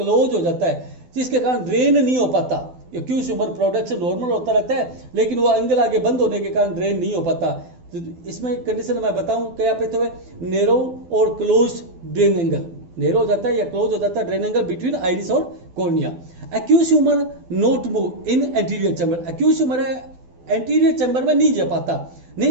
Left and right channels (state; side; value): late; left; 12 ms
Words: हो जाता है, जिसके कारण ड्रेन नहीं हो पाता। एक्यूज ह्यूमर प्रोडक्शन नॉर्मल होता रहता है, लेकिन वो एंगल आगे बंद होने के कारण ड्रेन नहीं हो पाता। तो इसमें कंडीशन मैं बताऊं क्या पे तो है, नैरो और क्लोज ड्रेन एंगल, नैरो हो जाता है या क्लोज हो जाता है ड्रेन एंगल बिटवीन आइरिस और cornea. Aqueous humour not move in anterior chamber, aqueous humour है एंटीरियर चैम्बर में नहीं जा पाता,